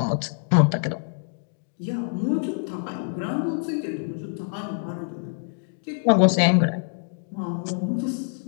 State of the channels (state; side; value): silent; right; digital silence